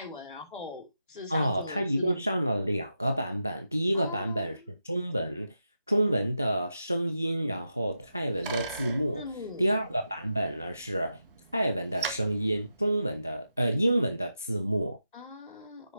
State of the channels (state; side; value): inverted; both; correlation -0.88